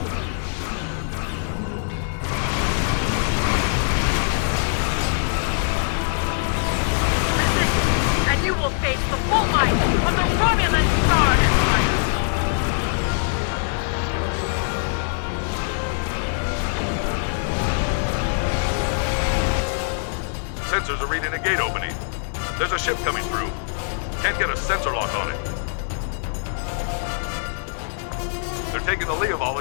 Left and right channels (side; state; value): right; silent; 56 dB below the other